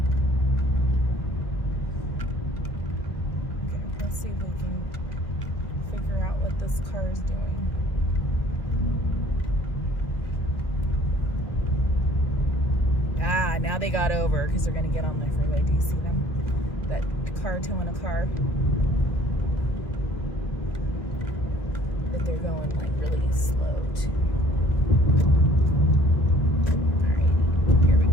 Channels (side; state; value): right; late; 1.4 ms